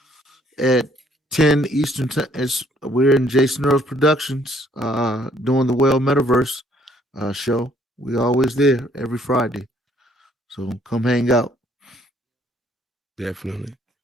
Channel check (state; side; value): normal; both; correlation 0.64